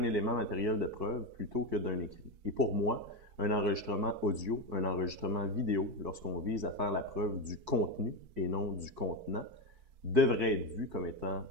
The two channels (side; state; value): left; late; 4.6 ms